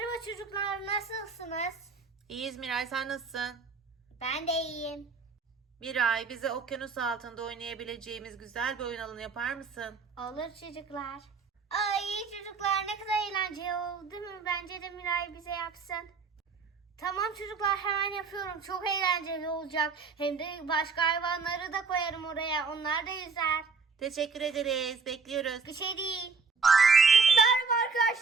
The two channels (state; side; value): quieter; left; 4.8 dB